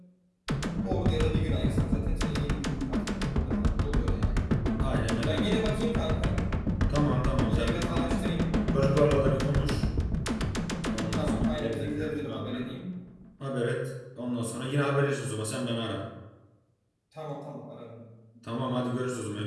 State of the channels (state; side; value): identical; both; correlation 1.00